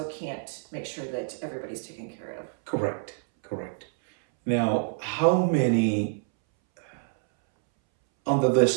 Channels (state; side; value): silent; left; 60 dB below the other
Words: can't make sure that everybody's taken care of. Correct. Now, how many under